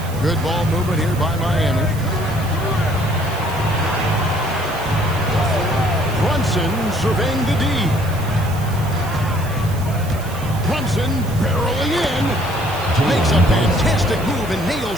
Good ball movement here by Miami. Brunson surveying the D. Brunson barreling in. Makes a fantastic move and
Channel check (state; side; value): noise; right; hiss, 17 dB below the sound